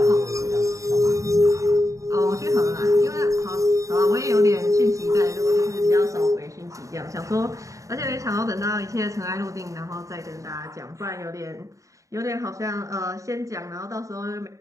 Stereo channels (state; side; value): late; left; 0.16 ms